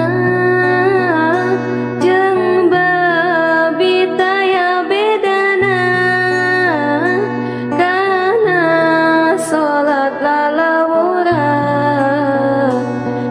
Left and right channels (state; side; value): identical; both; correlation 1.00